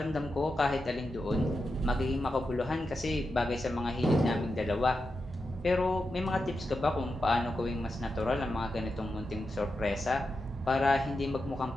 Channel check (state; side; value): normal; both; correlation 0.88